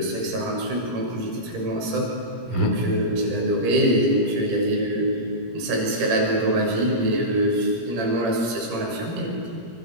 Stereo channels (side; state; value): left; late; 17 ms